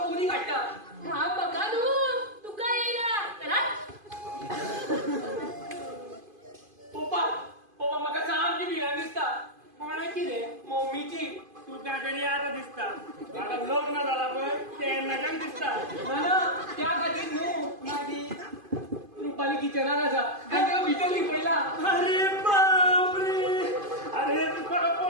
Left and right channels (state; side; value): late; left; 2.5 ms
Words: उदी काडटा घाम बघा न्हू तुका येयला चला पप्पा पप्पा म्हाका सामकी भिरांत दिसता कोणाची रे मम्मीची तुका तरी आता दिसता म्हाका लग्न जाला पळय तेन्नाच्यान दिसता ना त्या खातीर न्हू मागीर रुपाली किचनान आसा आनी ताका भितर लिपयला अरे बापरे अरे तुका